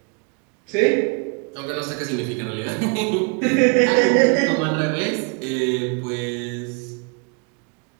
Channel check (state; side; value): quieter; left; 35.6 dB